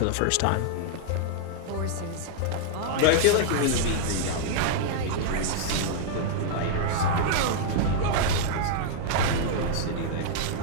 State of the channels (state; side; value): different; both; correlation -0.01